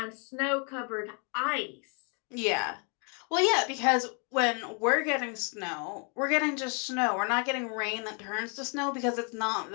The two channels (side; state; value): right; quieter; 37.3 dB